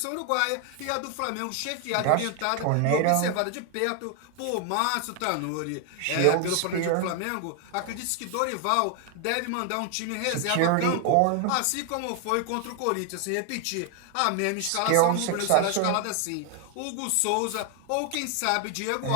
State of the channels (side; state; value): both; different; correlation 0.01